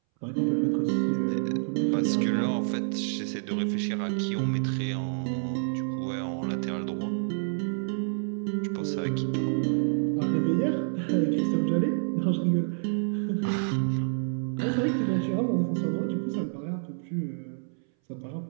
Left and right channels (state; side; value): silent; left; 59 dB below the other